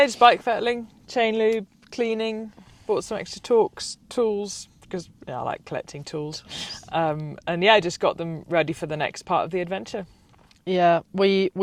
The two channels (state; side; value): identical; both; correlation 1.00